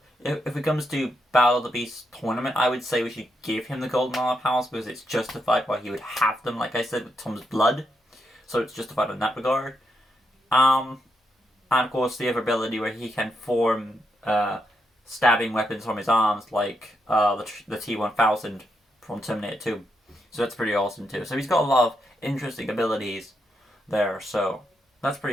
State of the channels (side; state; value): both; normal; correlation 0.81